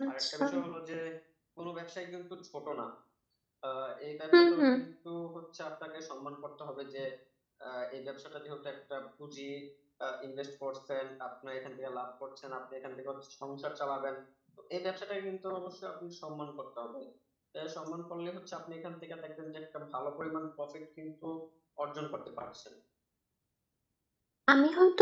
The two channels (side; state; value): both; identical; correlation 1.00